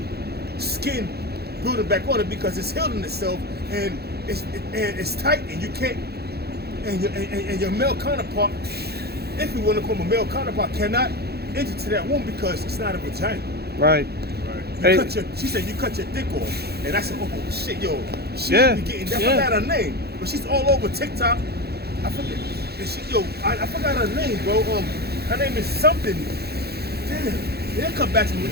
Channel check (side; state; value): left; late; 0.46 ms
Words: skin building back on it because it's healing itself and it's tight and you can't and your male counterpart, if you want to call him a male counterpart, cannot enter to that womb because it's not a vagina. Right. She said you cut your dick off, and I said, oh shit, yo, she be getting that. I forgot her name, but she's all over TikTok. I forget. I forgot her name, bro. Her name is something. Damn, they'll come back to